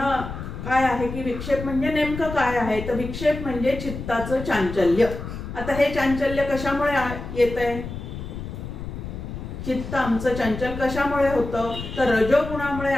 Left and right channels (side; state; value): left; noise; rumble, 8 dB below the sound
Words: काय आहे की विक्षेप म्हणजे नेमकं काय आहे, तर विक्षेप म्हणजे चित्ताचं चांचल्य. आता हे चांचल्य कशामुळे येत आहे, चित्त आमचं चंचल कशामुळे होतं, तर रजोगुणामुळे